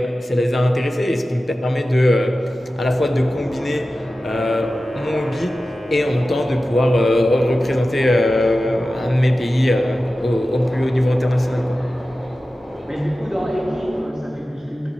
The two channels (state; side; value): normal; both; correlation 0.94